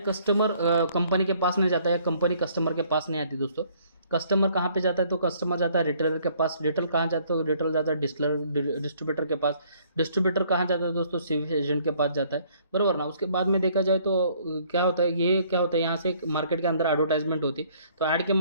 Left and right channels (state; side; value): inverted; both; correlation -0.62